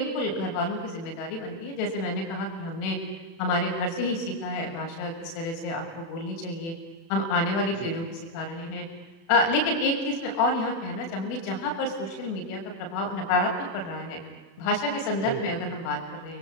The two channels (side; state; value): right; late; 36 ms